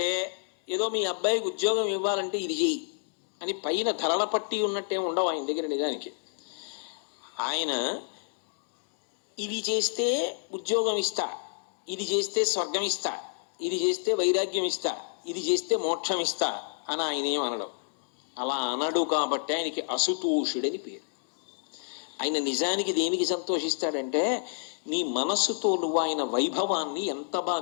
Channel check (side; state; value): right; silent; digital silence